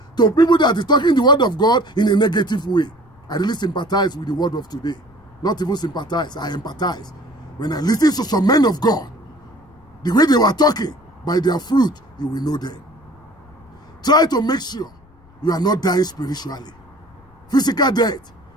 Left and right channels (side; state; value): left; noise; rumble, 28 dB below the sound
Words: to people that is talking the word of God in a negative way, I really sympathize with the word of today. Not even sympathize, I empathize. When I listen to some men of God, the way they were talking, by their fruit, you will know them. Try to make sure you are not dying spiritually. Physical death